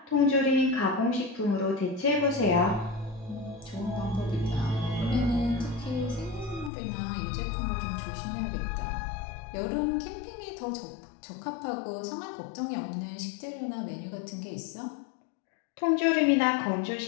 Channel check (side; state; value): right; drops out; at 6.7 s